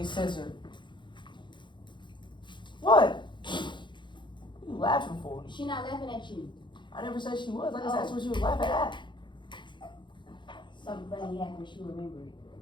censored. What? What are you laughing for? She not laughing at you. I never said she was. I just asked what she was laughing at. Something funny happened. She remembered.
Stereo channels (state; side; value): late; right; 0.23 ms